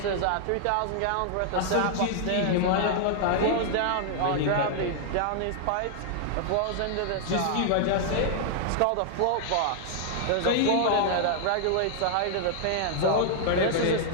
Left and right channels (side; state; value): both; different; correlation -0.01